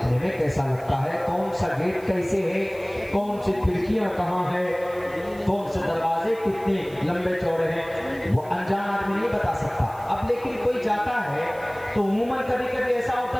میں کیسا لگتا ہے، کون سا گیٹ کیسے ہے، کون سی کھڑکیاں کہاں ہے، کون سے دروازے کتنے لمبے چوڑے ہیں، وہ انجان آدمی نہیں بتا سکتا۔ اب لیکن کوئی جاتا ہے تو عموماً کبھی کبھی ایسا ہوتا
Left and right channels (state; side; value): noise; right; hiss, 24 dB below the sound